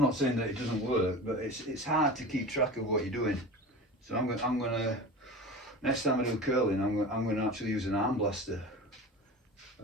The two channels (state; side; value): normal; both; correlation 0.33